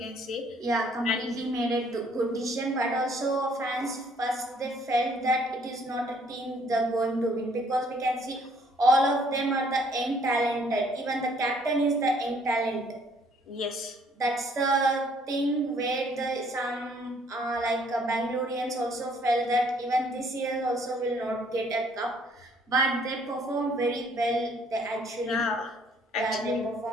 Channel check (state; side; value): normal; both; correlation 0.62